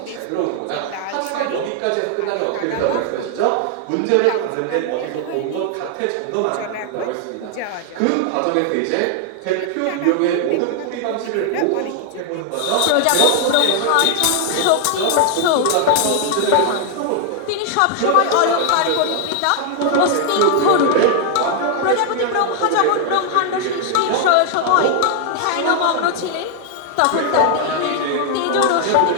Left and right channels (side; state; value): both; different; correlation 0.00